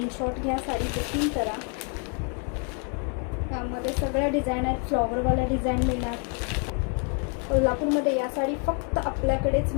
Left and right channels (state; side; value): quieter; right; 39.9 dB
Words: घ्या, साडी बुकिंग करा. त्यामध्ये सगळ्या डिझाईन आहेत, फ्लॉवरवाल्या डिझाईन मिळणार. कोल्हापूरमध्ये या साडी फक्त आपल्याकडेच